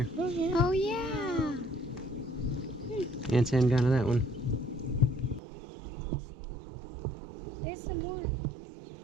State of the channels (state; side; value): drops out; left; at 5.4 s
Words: Oh yeah. Ants hadn't gone to that one. There's some more.